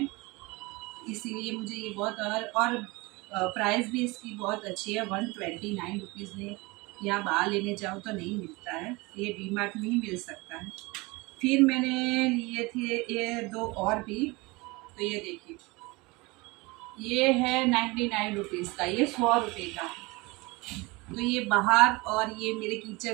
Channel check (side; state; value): left; quieter; 24.2 dB